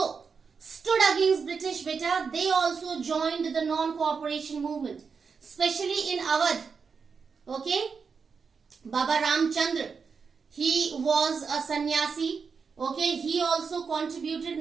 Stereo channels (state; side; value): quieter; left; 5.5 dB